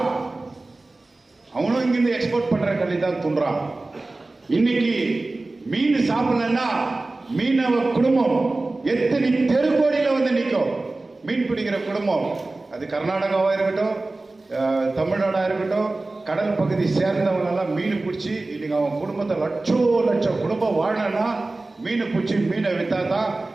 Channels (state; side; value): quieter; left; 3.1 dB